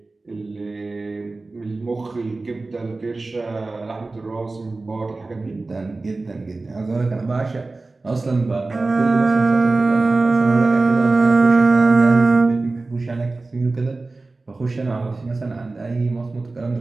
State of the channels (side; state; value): left; quieter; 3.4 dB